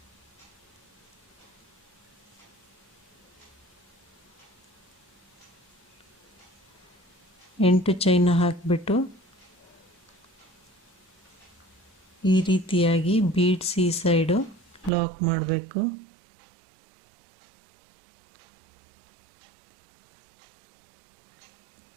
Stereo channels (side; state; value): left; drops out; at 14.9 s